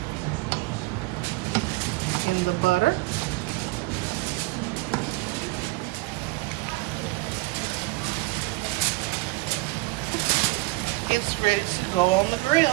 in the butter. It's ready to go on the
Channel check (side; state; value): left; quieter; 22.6 dB